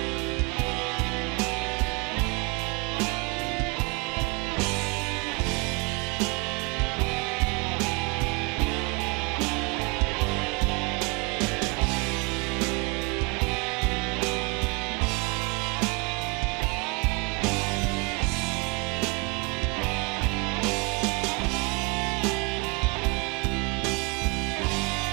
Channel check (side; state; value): left; quieter; 29.6 dB